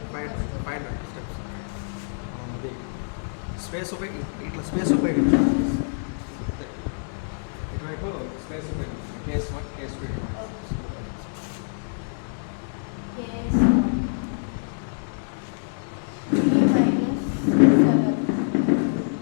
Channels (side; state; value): right; silent; digital silence